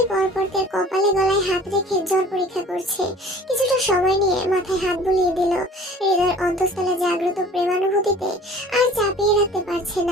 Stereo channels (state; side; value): normal; both; correlation 0.47